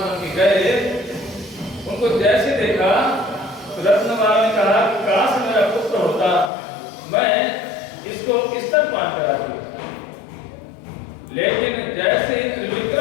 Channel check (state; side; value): drops out; right; at 6.5 s